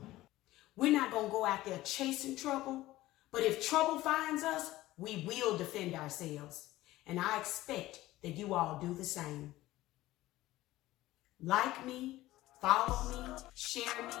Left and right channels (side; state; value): right; quieter; 16.7 dB